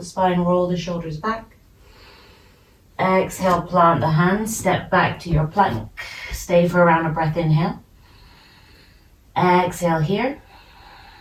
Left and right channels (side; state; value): both; identical; correlation 1.00